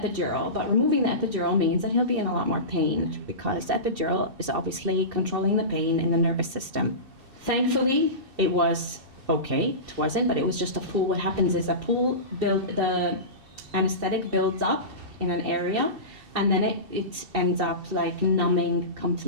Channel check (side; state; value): left; late; 2.7 ms